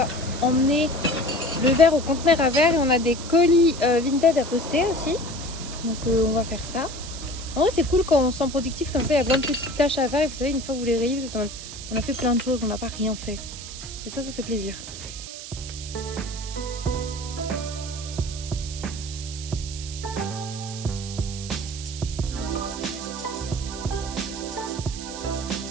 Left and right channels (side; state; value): right; noise; hiss, 11 dB below the sound